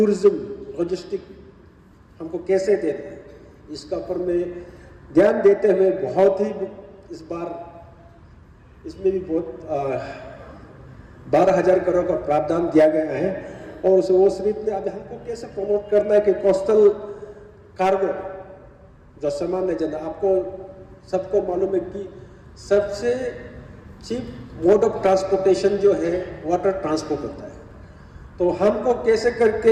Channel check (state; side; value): identical; both; correlation 1.00